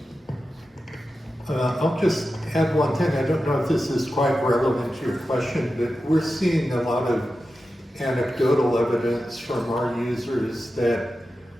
I'll just add one thing. I don't know if this is quite relevant to your question, but we're seeing a lot of anecdotal evidence from our users that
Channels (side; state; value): both; normal; correlation 0.92